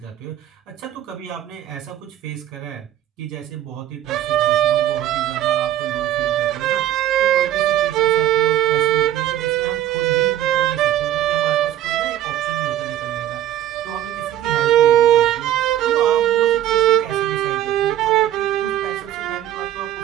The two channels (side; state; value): left; quieter; 12.3 dB